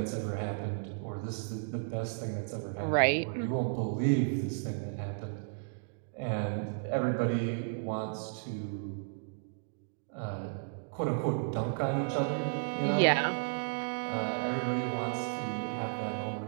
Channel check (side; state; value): left; silent; digital silence